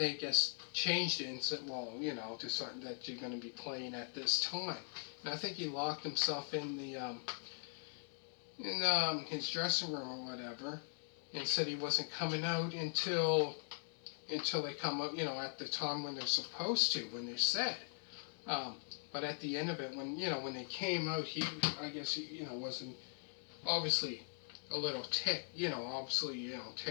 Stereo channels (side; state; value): right; silent; 51 dB below the other